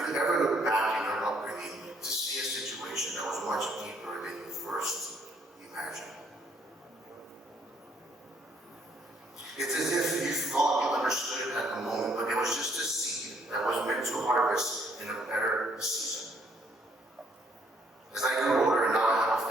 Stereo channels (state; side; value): normal; both; correlation 0.67